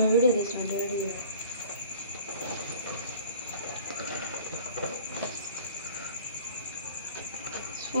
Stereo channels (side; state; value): both; inverted; correlation -0.46